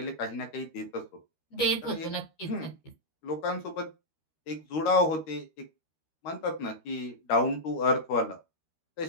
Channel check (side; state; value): right; late; 13 ms